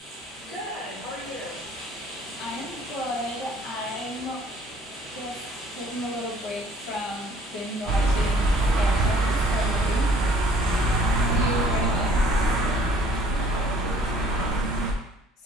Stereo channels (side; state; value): both; normal; correlation 0.56